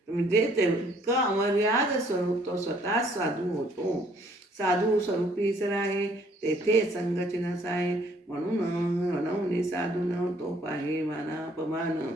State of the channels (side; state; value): both; normal; correlation 0.63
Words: म्हणजे तेवढं अमर्याद स्वरूप तो स्वतः साधू होतो. साधू स्वरूपी जर आहे तेथे संगचिनस आहे, म्हणून म्हणून साधू न तो पाहे मानापमान.